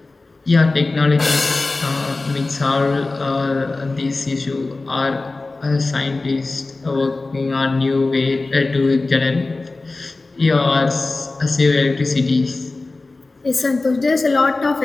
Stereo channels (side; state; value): right; quieter; 3.4 dB